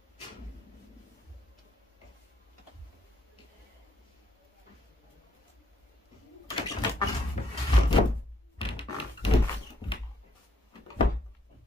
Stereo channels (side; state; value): both; normal; correlation 0.71